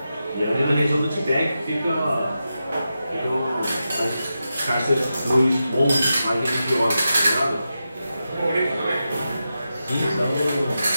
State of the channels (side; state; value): both; inverted; correlation -0.90